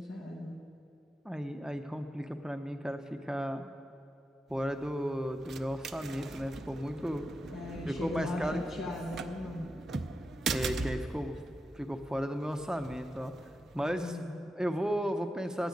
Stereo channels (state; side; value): normal; both; correlation 0.88